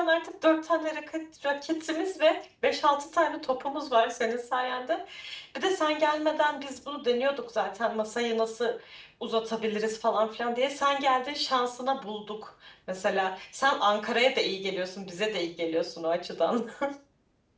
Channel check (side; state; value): both; identical; correlation 1.00